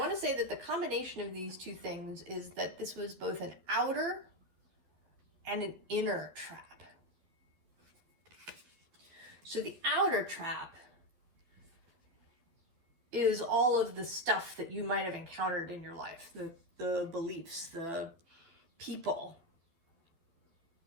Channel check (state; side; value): late; left; 12 ms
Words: to say that the combination of these two things is that this was both an outer and an inner trap. So the outer trap is all of the stuff that you might have encountered in your life, the beliefs, the people